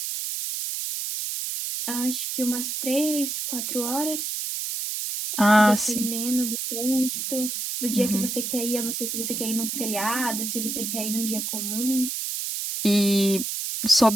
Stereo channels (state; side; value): noise; right; hiss, 3 dB below the sound